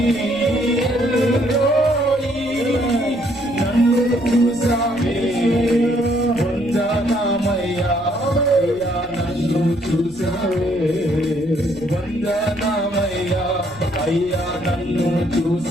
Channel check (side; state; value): left; noise; rumble, 21 dB below the sound